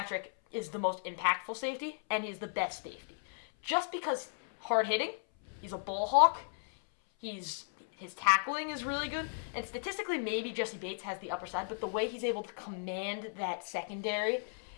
is the most impactful safety, and he's the best safety. Just because hard-hitting, he's a ball hawk, his tackling is really good, and statistically maybe Jesse Bates has the upper side, but the way he's able to command that secondary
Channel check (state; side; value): silent; right; 55 dB below the other